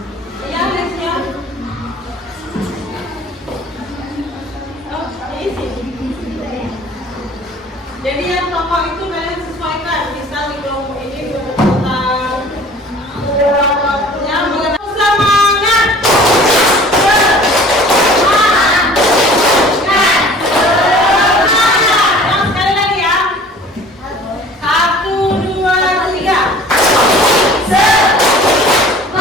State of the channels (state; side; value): normal; both; correlation 0.47